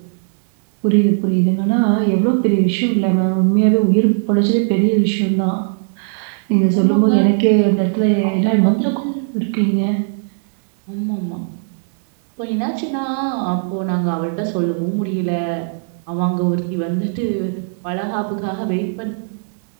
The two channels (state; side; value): silent; left; digital silence